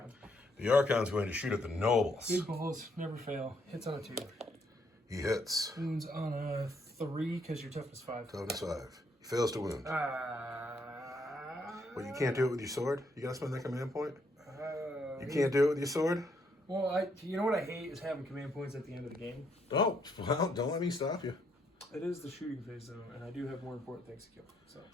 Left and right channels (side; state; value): both; normal; correlation 0.73